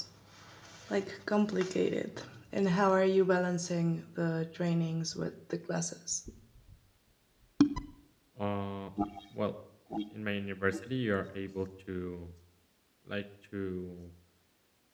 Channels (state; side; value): identical; both; correlation 1.00